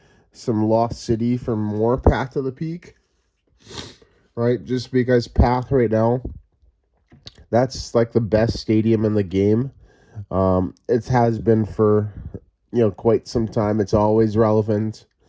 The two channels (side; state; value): both; identical; correlation 1.00